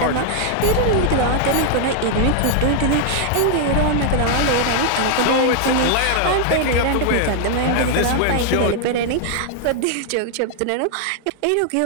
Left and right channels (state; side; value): different; both; correlation 0.00